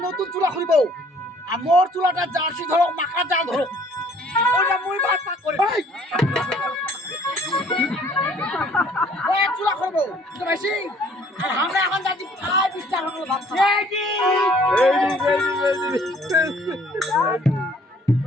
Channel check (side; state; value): both; normal; correlation 0.58